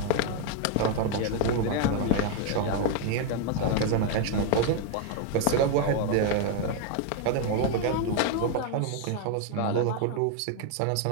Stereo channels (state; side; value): different; both; correlation 0.01